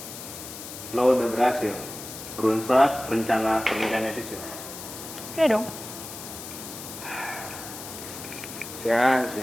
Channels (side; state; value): left; noise; hiss, 11 dB below the sound